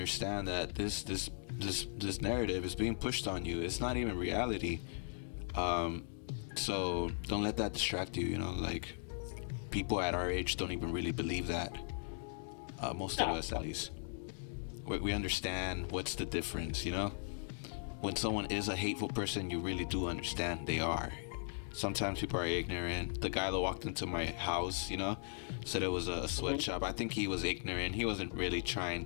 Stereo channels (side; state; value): right; silent; digital silence